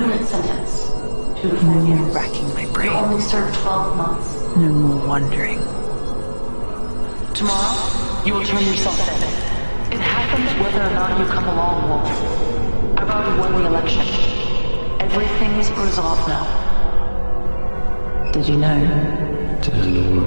No more racking my brain. You only served 12 months. No more wondering. Tomorrow, you will turn yourself in. It happens whether or not you come along, Wolf. I've already won the election. Everything's resolved now. Did you know? Did I know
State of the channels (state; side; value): inverted; both; correlation -1.00